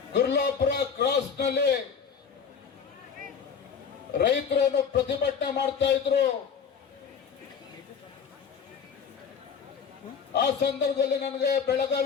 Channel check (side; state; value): right; quieter; 6.6 dB